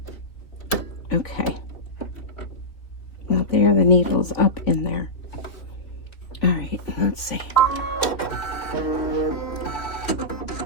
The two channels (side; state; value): right; late; 3.3 ms